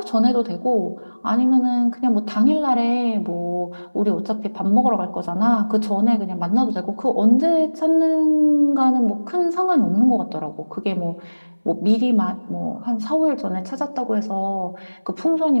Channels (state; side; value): inverted; both; correlation -1.00